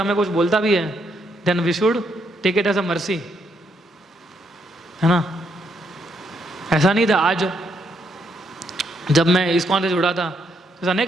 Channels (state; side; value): normal; both; correlation 0.75